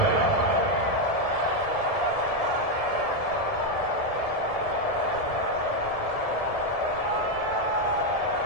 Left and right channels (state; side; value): late; right; 1.7 ms